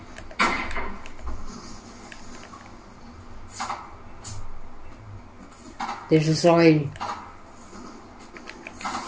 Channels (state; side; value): identical; both; correlation 1.00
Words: Et je saurai lui.